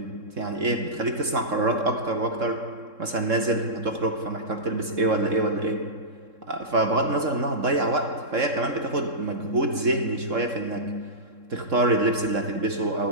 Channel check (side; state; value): left; late; 3.7 ms